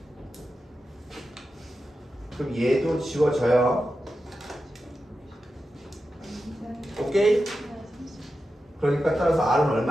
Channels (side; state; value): both; normal; correlation 0.91